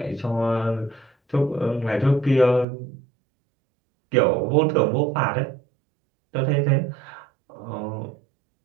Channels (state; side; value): drops out; left; at 2.7 s